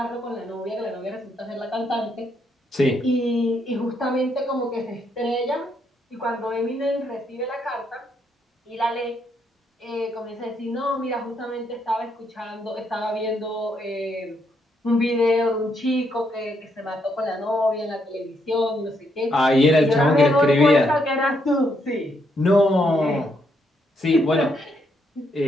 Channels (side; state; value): both; normal; correlation 0.76